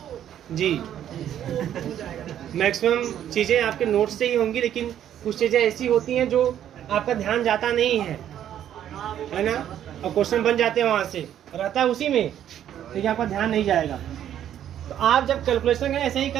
जी मैक्सिमम चीज़ें आपके नोट से ही होंगी, लेकिन कुछ चीज़ें ऐसी होती हैं जो आपका ध्यान जाता नहीं है ना, और क्वेश्चन बन जाते हैं वहाँ से, रहता है उसी में, लेकिन आपका ध्यान नहीं जाएगा। तो आप जब कैलकुलेशन करें ऐसे ही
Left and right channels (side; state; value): left; quieter; 10.6 dB